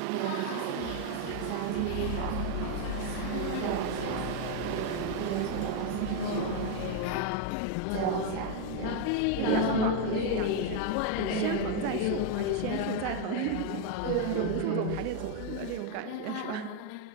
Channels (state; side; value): different; both; correlation 0.01